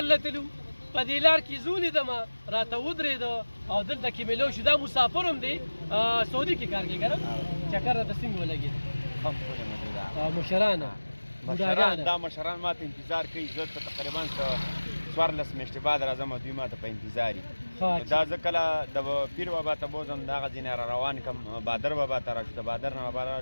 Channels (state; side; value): inverted; both; correlation -1.00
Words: لتلو، په دې لار کې زه ولیدمه، راته ودرېده او دلته کې مې لو شو. دا مسافر هم دی، سعودي کې کار کوي که نه؟ چکر راته څنګه ولګېد؟ مشران دا مشران ما ته انتظار کوي. زه ته تقریبا 14 میاشتې بعد راځم او دوی ما ته په انتظار دي. دا زه کله د پیر بابا ته بوځم، د هغه ځینې را روان کړم، بادر بابا ته راشو، د بادر نه بابا